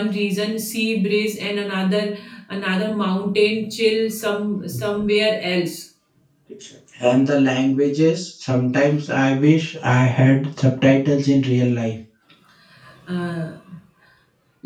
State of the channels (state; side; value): identical; both; correlation 1.00